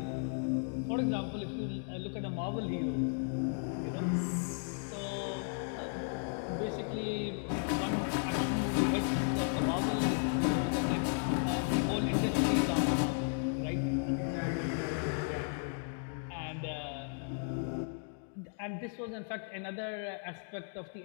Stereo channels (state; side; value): silent; right; 55 dB below the other